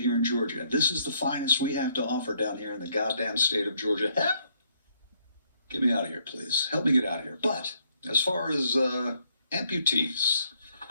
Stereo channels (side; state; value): both; inverted; correlation -0.70